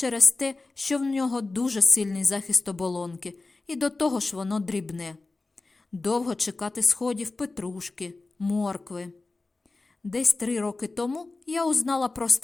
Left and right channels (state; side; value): quieter; right; 3.4 dB